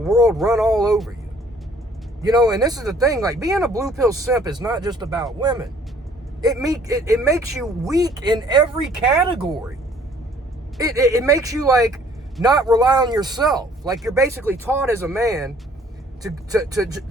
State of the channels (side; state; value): both; normal; correlation 0.58